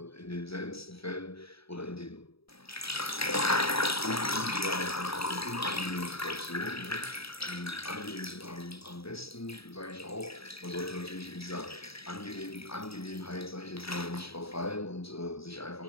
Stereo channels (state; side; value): late; right; 0.77 ms